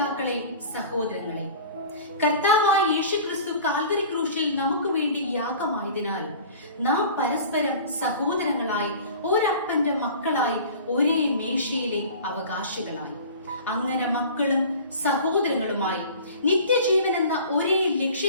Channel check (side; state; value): both; inverted; correlation -0.42